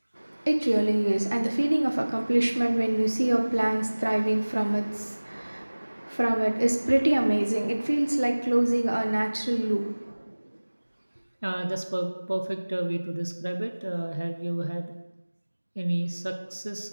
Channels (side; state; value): both; inverted; correlation -1.00